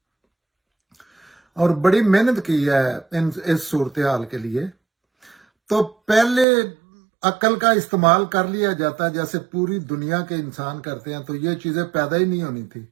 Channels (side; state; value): left; drops out; at 6.5 s